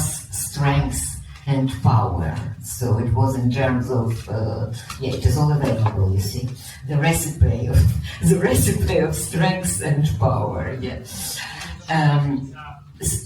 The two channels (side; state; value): both; identical; correlation 1.00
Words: strength and power. So it was in terms of, it is all available, you see, the recipe of strength and power.